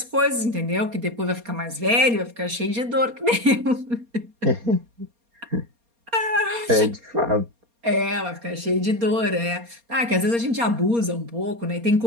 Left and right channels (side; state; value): left; late; 4.3 ms